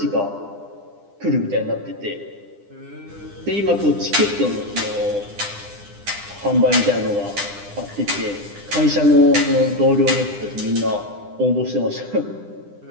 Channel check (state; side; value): late; left; 9.9 ms